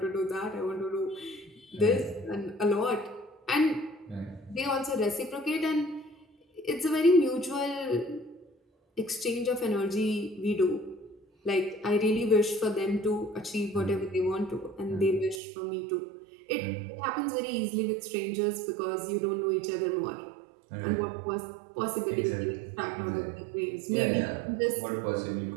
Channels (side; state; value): left; drops out; at 15.4 s